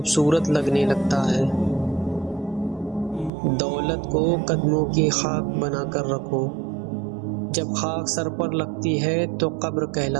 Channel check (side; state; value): left; drops out; at 3.3 s